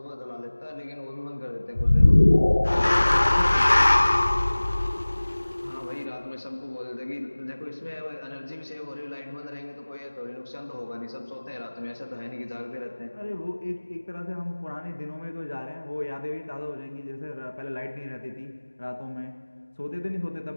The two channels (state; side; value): inverted; both; correlation -1.00